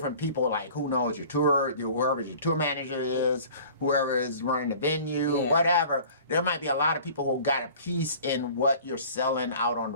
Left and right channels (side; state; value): both; inverted; correlation -0.46